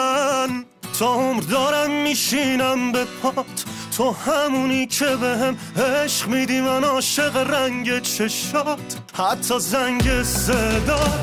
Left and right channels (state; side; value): identical; both; correlation 1.00